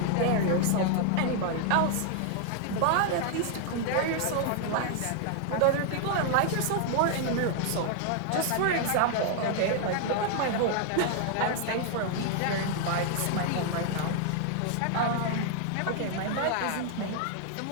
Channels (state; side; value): different; both; correlation 0.00